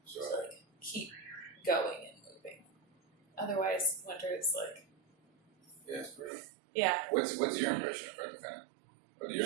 to like keep going and moving. Otherwise, winter is like it's brutal. yeah. What's your impression of Cartagena? What are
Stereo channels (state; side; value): drops out; left; at 6.3 s